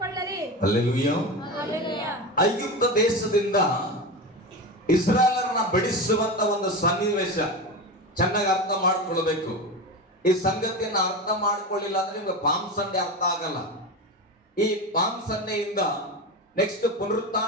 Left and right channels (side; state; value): both; normal; correlation 0.22